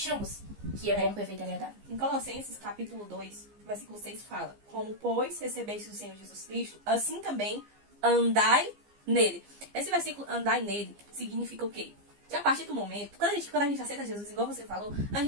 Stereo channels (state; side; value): late; left; 15 ms